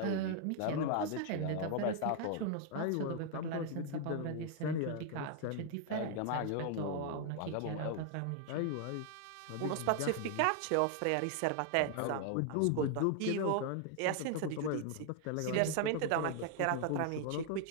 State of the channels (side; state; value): both; different; correlation 0.00